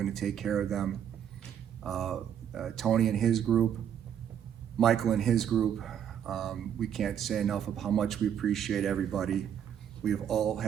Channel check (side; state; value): left; quieter; 9.2 dB